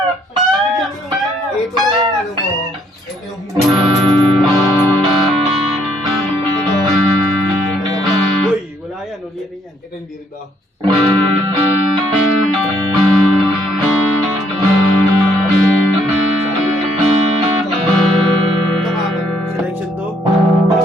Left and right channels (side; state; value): both; normal; correlation 0.68